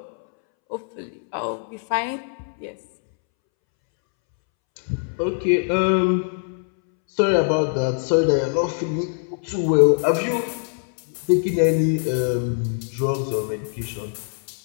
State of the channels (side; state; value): right; silent; 64 dB below the other